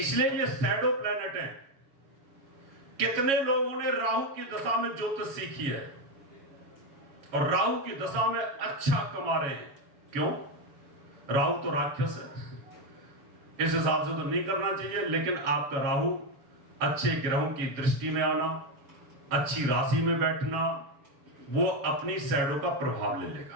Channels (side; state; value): left; late; 7.3 ms